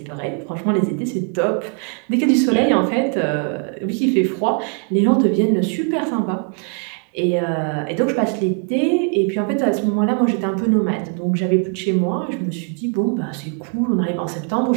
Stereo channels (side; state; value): left; quieter; 39.3 dB